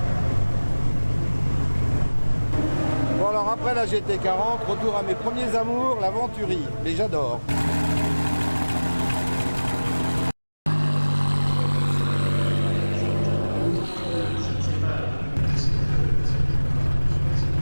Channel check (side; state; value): both; inverted; correlation -1.00